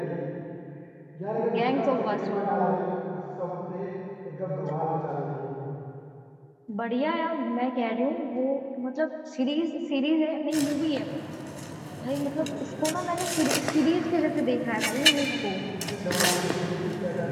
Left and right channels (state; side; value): identical; both; correlation 1.00